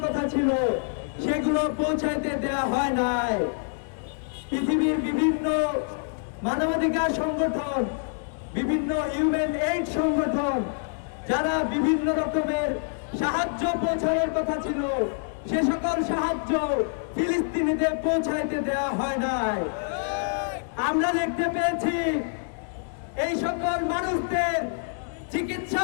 কথা ছিল সেগুলো পৌঁছাইতে দেওয়া হয় নাই। পৃথিবীর বিভিন্ন মানবাধিকার সংগঠন, বিভিন্ন হিউম্যান এইড সংগঠন যারা বিভিন্ন রকমের সাহায্য পৌঁছানোর কথা ছিল সে সকল সাহায্য ফিলিস্তিনিতে পৌঁছাইতে দেওয়া হয় নাই। আমরা দেখতে পেয়েছি এই সকল মানুষদের চিকিৎসা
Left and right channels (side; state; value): right; silent; 61 dB below the other